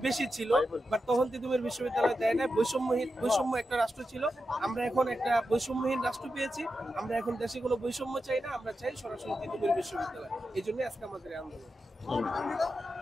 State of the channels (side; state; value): both; normal; correlation 0.89